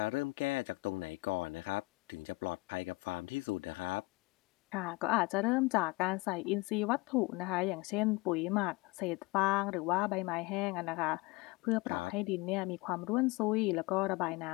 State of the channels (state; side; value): quieter; right; 24.5 dB